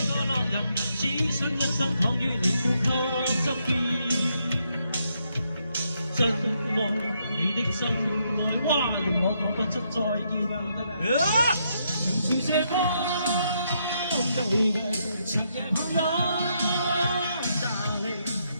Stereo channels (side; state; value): both; inverted; correlation -0.77